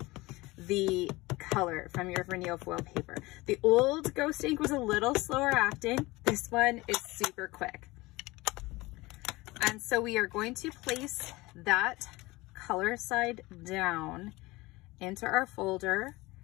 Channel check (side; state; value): right; quieter; 21.3 dB